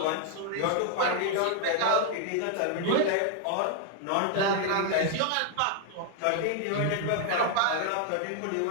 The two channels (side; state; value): both; different; correlation 0.00